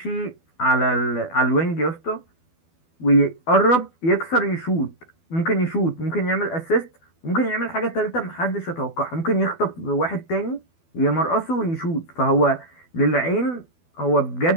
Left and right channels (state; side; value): late; right; 12 ms